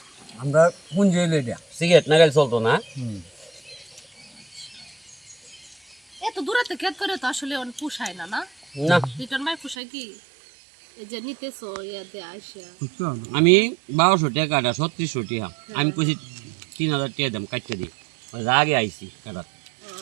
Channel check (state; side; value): drops out; left; at 9.8 s